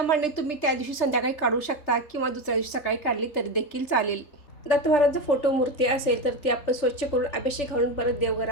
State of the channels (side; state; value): right; late; 3.3 ms